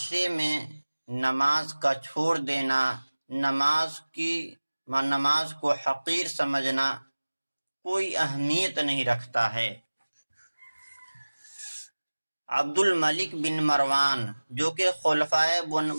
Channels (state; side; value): inverted; both; correlation -1.00